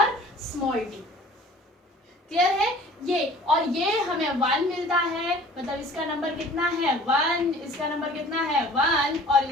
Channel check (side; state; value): both; normal; correlation 0.48